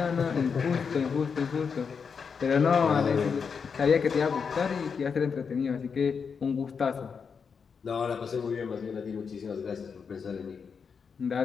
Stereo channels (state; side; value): quieter; right; 6.0 dB